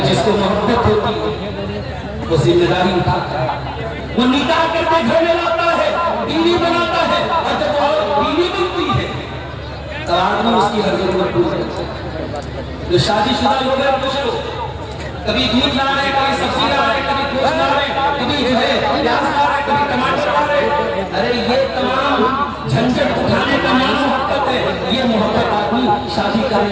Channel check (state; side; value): identical; both; correlation 1.00